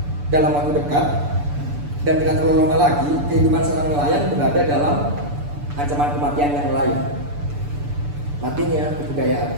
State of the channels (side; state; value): left; late; 6.9 ms